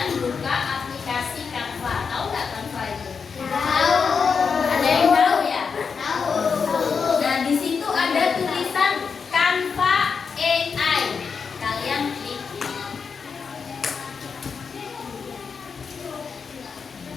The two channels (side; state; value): right; quieter; 5.7 dB